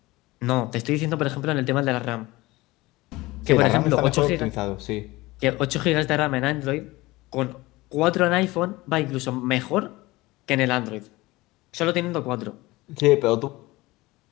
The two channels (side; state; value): right; quieter; 20.4 dB